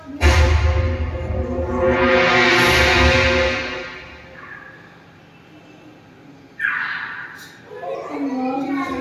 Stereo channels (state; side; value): identical; both; correlation 1.00